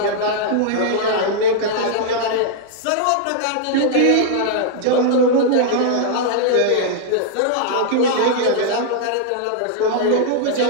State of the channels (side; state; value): both; different; correlation -0.01